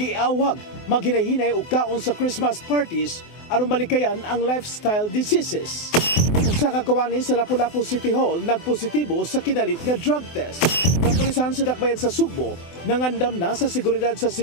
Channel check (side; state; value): right; late; 24 ms